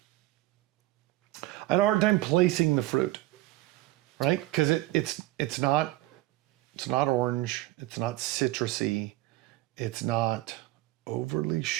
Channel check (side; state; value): left; quieter; 17.8 dB